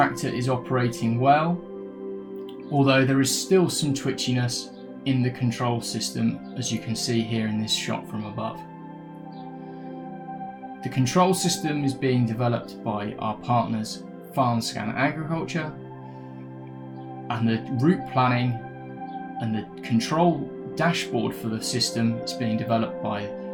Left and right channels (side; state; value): both; identical; correlation 1.00